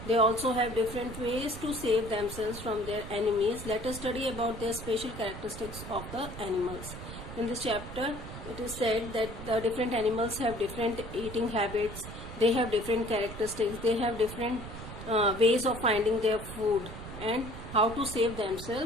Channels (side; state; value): right; noise; rumble, 11 dB below the sound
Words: They also have different ways to save themselves from their enemies. Let us study about their special characteristics of the animals. In this chapter, it is said that the different animals have different eating habits, they have different characteristics, they have different ways of finding their food and how to save